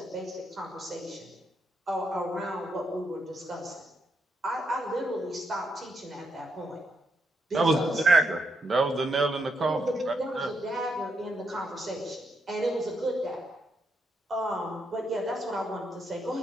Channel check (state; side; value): normal; both; correlation 0.80